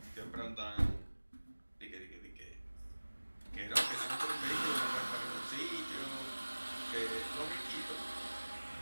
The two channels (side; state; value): both; inverted; correlation -1.00